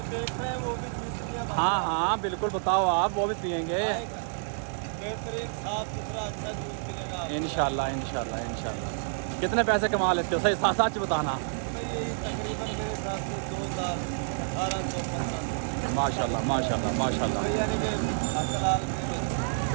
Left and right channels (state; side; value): silent; left; digital silence